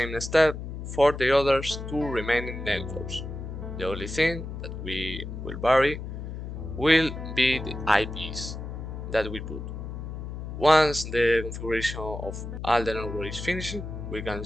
step for the others two remaining networks. The only thing that we will vary will be the IPs that we put. Once the configuration of all the networks is finished, we can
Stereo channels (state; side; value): noise; left; hum, 7 dB below the sound